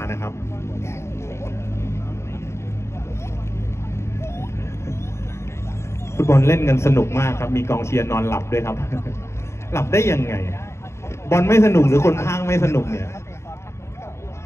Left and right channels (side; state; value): right; late; 0.13 ms